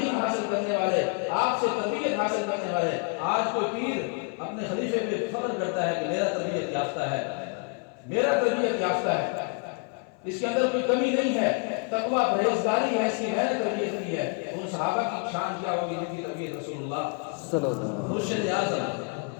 حاصل کرنے والے، آپ سے تربیت حاصل کرنے والے۔ آج کوئی پیر اپنے خلیفے پہ فخر کرتا ہے کہ میرا تربیت یافتہ ہے، میرا تربیت یافتہ ہے، اس کے اندر کوئی کمی نہیں ہے. تقویٰ پرہیزگاری ایسی میں نے تربیت کی ہے. ان صحابہ کی شان کیا ہوگی جن کی تربیت رسول اللہ صلی اللہ علیہ وسلم. مرشد اعظم،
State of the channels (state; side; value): quieter; right; 35.8 dB